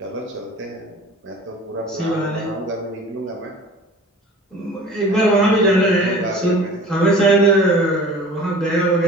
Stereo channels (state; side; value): normal; both; correlation 0.43